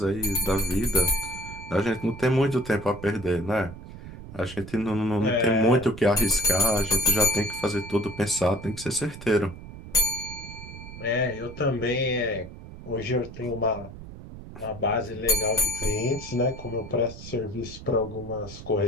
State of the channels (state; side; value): noise; right; rumble, 14 dB below the sound